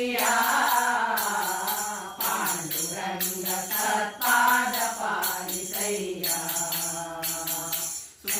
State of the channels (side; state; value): both; identical; correlation 1.00